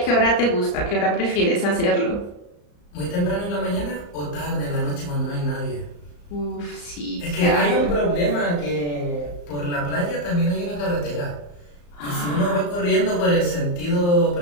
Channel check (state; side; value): late; right; 34 ms